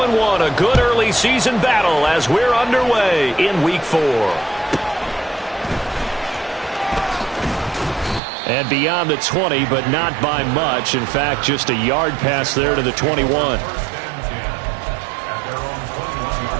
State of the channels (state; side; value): drops out; left; at 8.2 s